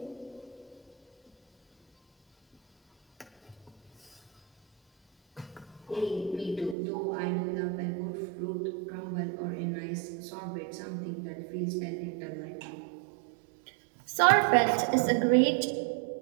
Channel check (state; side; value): drops out; left; at 6.8 s